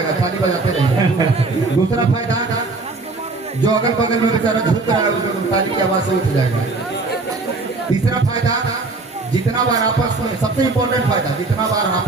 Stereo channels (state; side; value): quieter; left; 3.6 dB